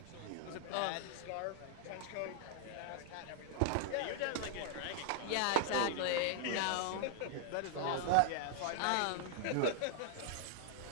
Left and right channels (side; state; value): both; different; correlation -0.01